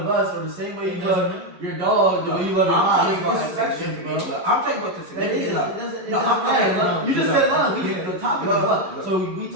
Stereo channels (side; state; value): left; late; 11 ms